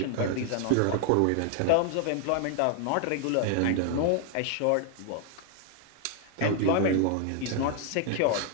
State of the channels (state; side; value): different; both; correlation 0.00